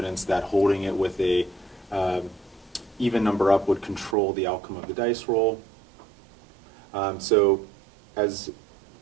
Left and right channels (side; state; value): left; drops out; at 4.2 s